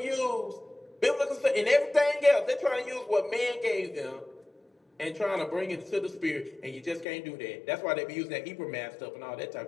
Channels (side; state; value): right; drops out; at 7.1 s